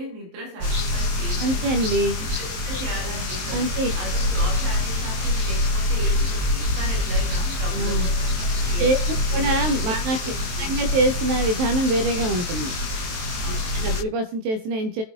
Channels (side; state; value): left; late; 23 ms